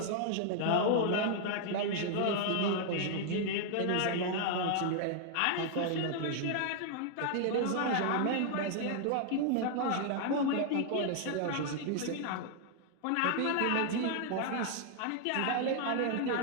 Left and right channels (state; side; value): different; both; correlation 0.00